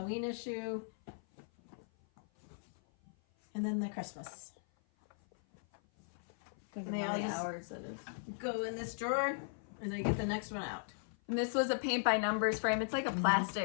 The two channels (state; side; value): silent; right; 53 dB below the other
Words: issue. And then the Christmas. Think And of they how all many just hours it is. go in this drawer, and I get the next one out. And this was a paint by numbers frame. It's like a